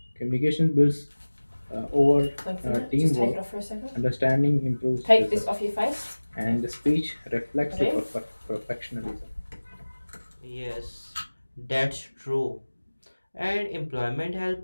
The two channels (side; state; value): both; inverted; correlation -1.00